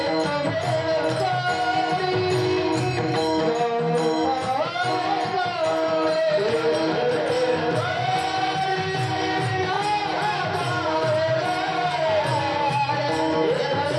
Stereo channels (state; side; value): identical; both; correlation 1.00